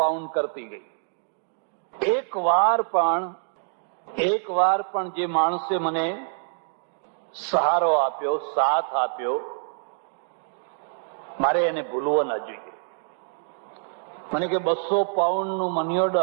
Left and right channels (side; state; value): left; silent; digital silence